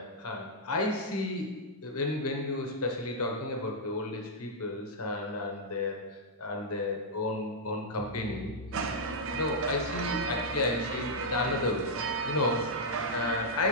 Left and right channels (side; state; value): both; normal; correlation -0.07